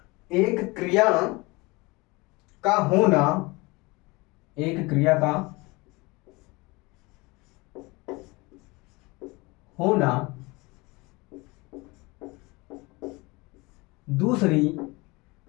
क्रिया का होना, एक क्रिया का होना दूसरी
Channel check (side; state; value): right; quieter; 24.5 dB